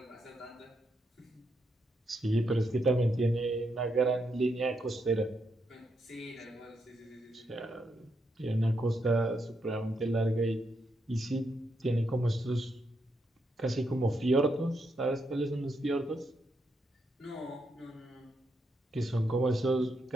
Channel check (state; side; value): normal; both; correlation 0.81